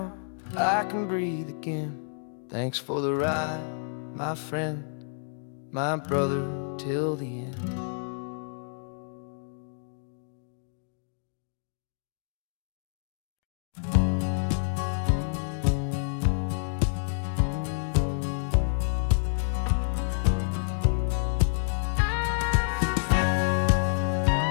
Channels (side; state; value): right; silent; digital silence